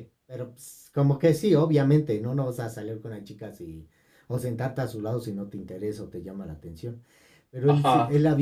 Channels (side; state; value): both; identical; correlation 1.00